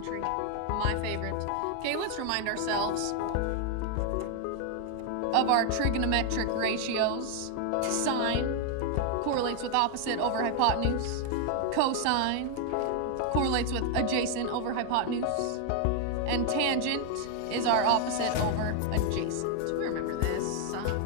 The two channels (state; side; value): different; both; correlation 0.00